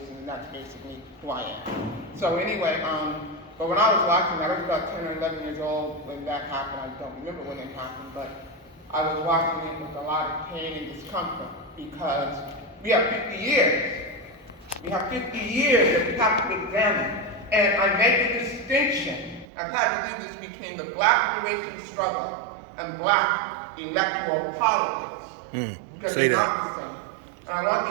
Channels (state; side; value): drops out; left; at 19.5 s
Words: and that's basically who I am. So anyway, but when I was watching that, I was about 10 or 11 years old when that happened. I don't remember when it happened, but I was watching it with a lot of pain and discomfort because we have 50 years. We have 50 years that we have to examine. And I make a distinction. I've had to do this between the black liberation struggle and black electoral politics. Because say they're that. not the same. And I want